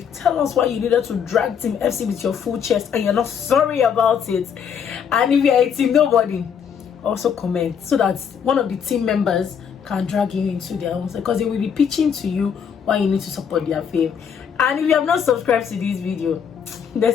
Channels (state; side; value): quieter; right; 7.5 dB